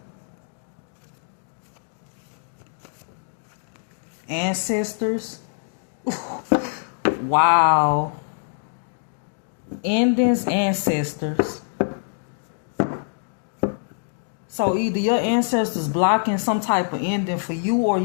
Ancestors. Wow. Endings, ancestors. So either your ancestors blocking some type of ending for you, or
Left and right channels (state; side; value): silent; right; digital silence